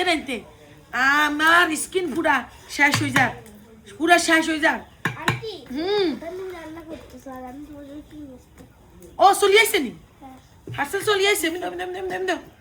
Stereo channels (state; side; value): identical; both; correlation 1.00